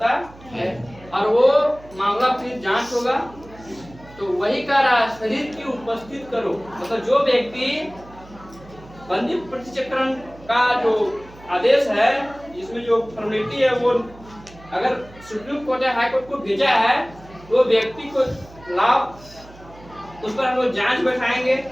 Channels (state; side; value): noise; right; hum, 21 dB below the sound